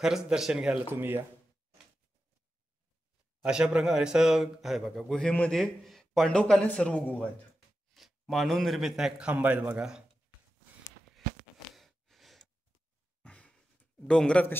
दर्शन घ्यायला तुम्ही या. अशा प्रकारे असं आहे बघा. गुहेमध्ये पांडवकालीन सर्व गुहा आहेत. मानव निर्मित नाही, खांब आहेत बघा. डोंगरात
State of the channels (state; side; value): normal; both; correlation 0.91